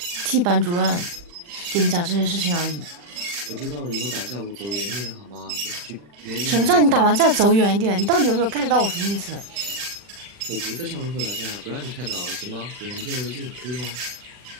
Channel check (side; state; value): left; late; 40 ms